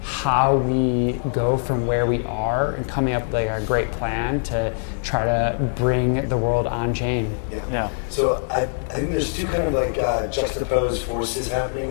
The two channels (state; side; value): silent; right; 64 dB below the other